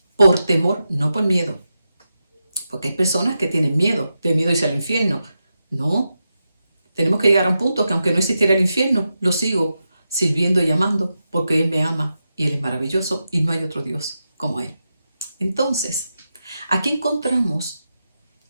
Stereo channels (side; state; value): both; inverted; correlation -0.89